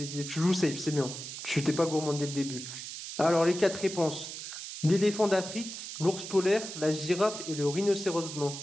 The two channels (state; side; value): noise; right; hiss, 9 dB below the sound